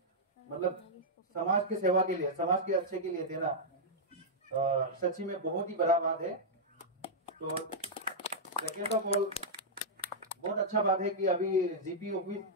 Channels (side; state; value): both; normal; correlation -0.08